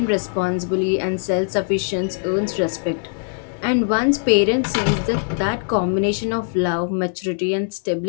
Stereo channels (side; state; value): right; silent; digital silence